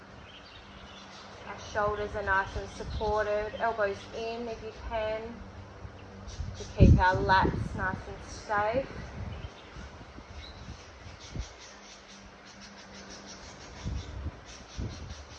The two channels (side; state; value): both; identical; correlation 1.00